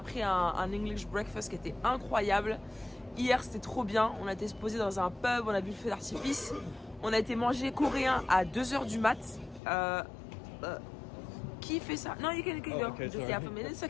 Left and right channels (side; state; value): right; drops out; at 9.6 s